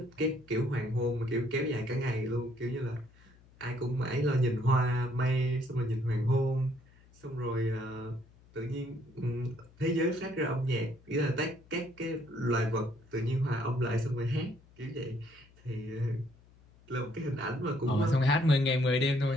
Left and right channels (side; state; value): left; noise; hum, 27 dB below the sound